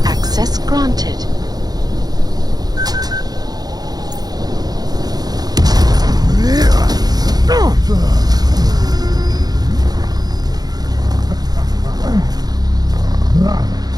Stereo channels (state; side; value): late; left; 0.19 ms